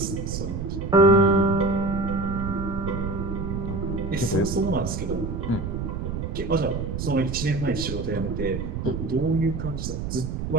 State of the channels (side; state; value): right; noise; rumble, 4 dB below the sound